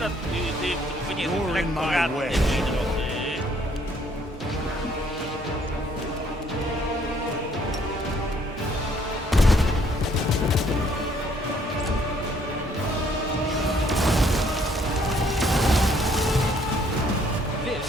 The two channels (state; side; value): normal; both; correlation 0.65